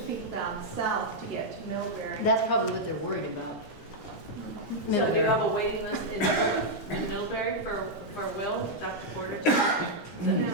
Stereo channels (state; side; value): late; right; 4.2 ms